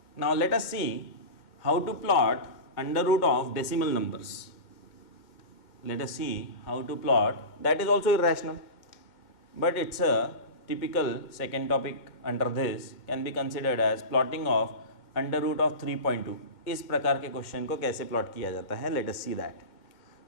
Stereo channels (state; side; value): late; right; 2.1 ms